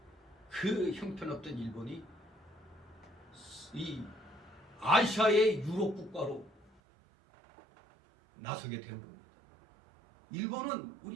그 형편없던 일본이 이 아시아의 유럽 국가로 나서게 된 겁니다. 일본은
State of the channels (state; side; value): drops out; left; at 6.7 s